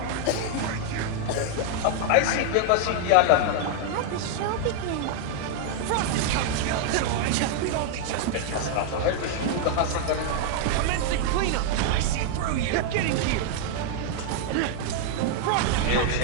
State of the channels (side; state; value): both; different; correlation -0.01